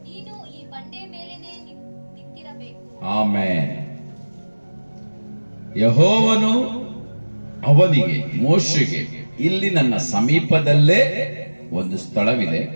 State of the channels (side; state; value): both; inverted; correlation -1.00